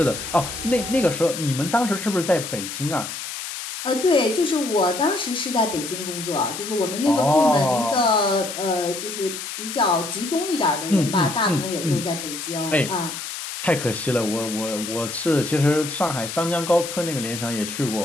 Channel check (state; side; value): noise; left; hiss, 7 dB below the sound